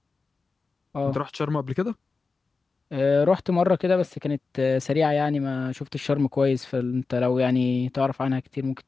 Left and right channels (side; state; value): right; quieter; 4.2 dB